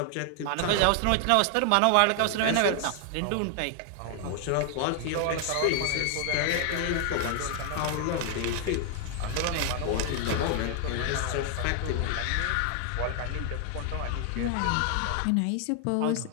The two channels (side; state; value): both; different; correlation 0.00